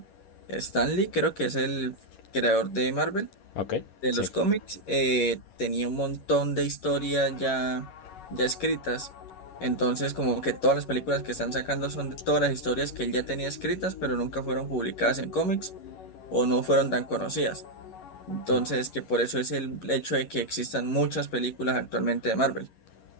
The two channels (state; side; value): late; right; 11 ms